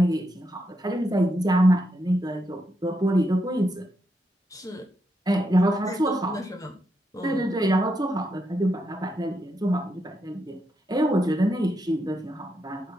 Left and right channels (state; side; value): normal; both; correlation 0.82